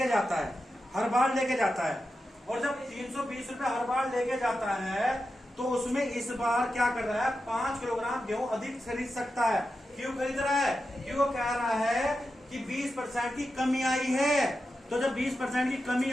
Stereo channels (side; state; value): both; normal; correlation 0.90